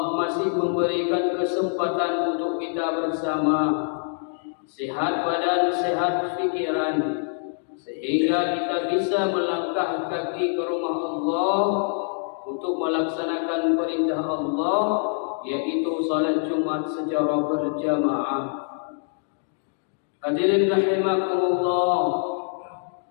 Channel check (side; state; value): right; silent; digital silence